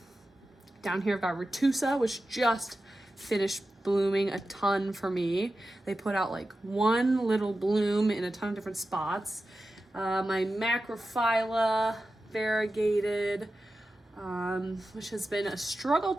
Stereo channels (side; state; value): both; normal; correlation 0.93